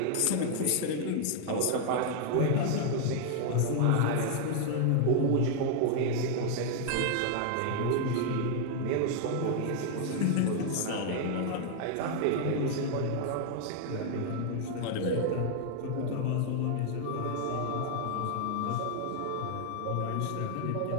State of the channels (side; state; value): both; different; correlation 0.00